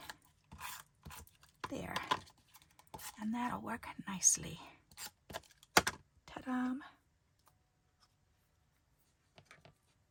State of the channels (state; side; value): identical; both; correlation 1.00